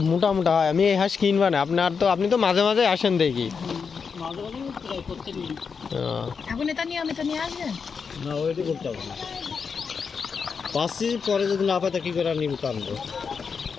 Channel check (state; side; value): quieter; right; 5.8 dB